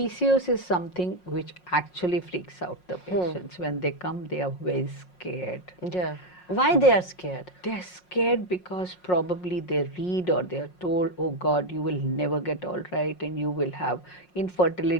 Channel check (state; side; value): late; right; 5.5 ms